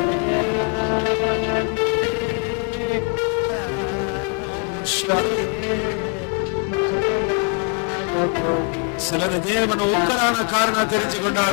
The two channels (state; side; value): quieter; right; 32.1 dB